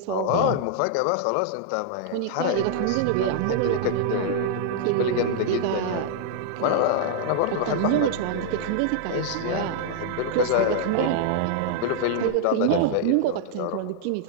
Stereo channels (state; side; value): different; both; correlation -0.01